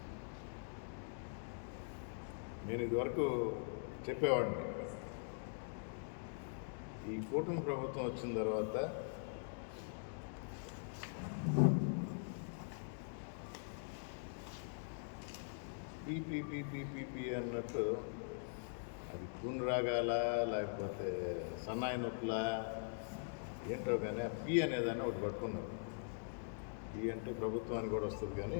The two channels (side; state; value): right; silent; digital silence